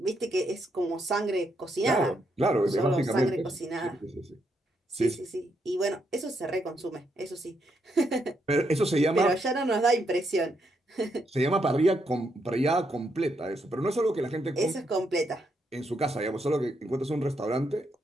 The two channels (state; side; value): normal; both; correlation 0.78